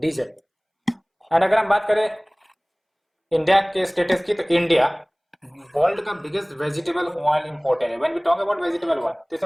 और अगर हम बात करें इंडिया के स्टेटस की, तो इंडिया वर्ल्ड का बिगेस्ट वेजिटेबल ऑयल इंपोर्टर है। When we talk about vegetable oil, तो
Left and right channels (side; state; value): both; identical; correlation 1.00